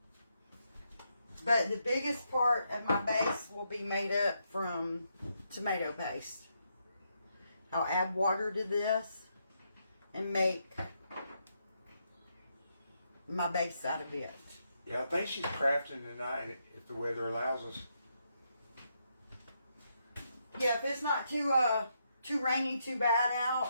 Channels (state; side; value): inverted; both; correlation -0.80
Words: But the biggest part of my base will be made up from tomato paste. I'll add water to this and make my base out of it. Yeah, I think she's crafting tonight if the weather allows us. Yeah, if it's not too rainy, too bad